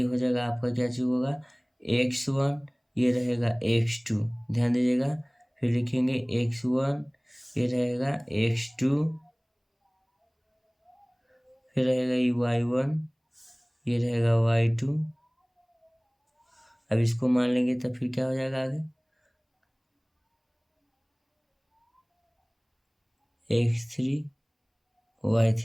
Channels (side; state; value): both; identical; correlation 1.00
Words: हो जाएगा आपका, क्या चीज होगा? x1, ये रहेगा x2। ध्यान दीजिएगा। फिर लिखेंगे x1, ये रहेगा x2, फिर रहेगा ये y1, ये रहेगा y2। अब इसको मान लेंगे तो फिर क्या हो जाएगा आगे? x3,